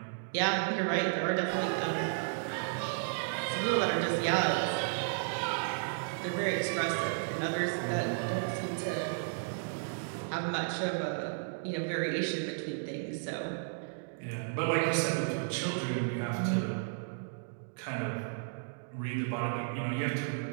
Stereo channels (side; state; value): left; silent; digital silence